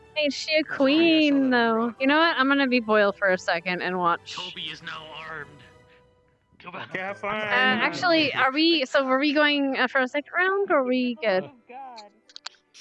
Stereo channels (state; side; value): identical; both; correlation 1.00